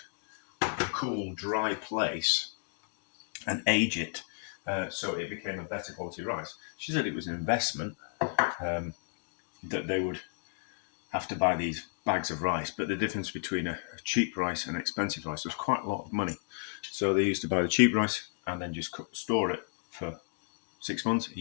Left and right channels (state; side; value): silent; right; 56 dB below the other